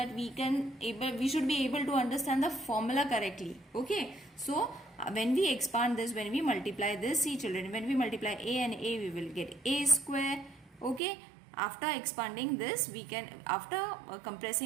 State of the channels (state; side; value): drops out; left; at 11.0 s